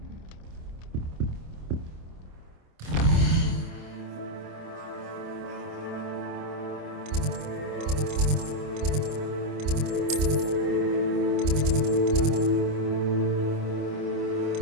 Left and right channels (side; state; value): left; late; 27 ms